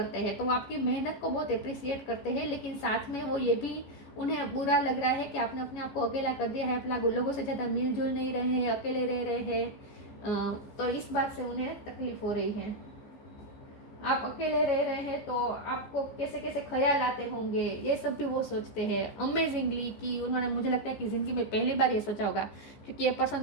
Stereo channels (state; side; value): late; right; 14 ms